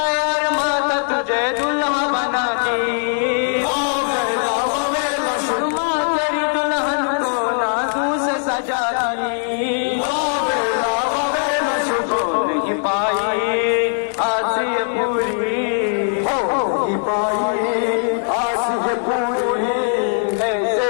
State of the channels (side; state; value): right; silent; digital silence